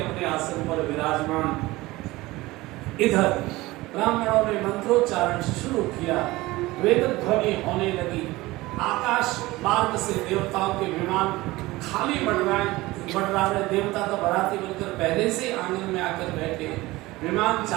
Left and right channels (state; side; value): quieter; left; 19.6 dB